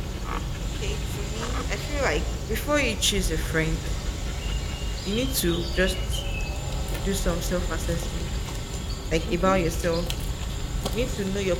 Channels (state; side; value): identical; both; correlation 1.00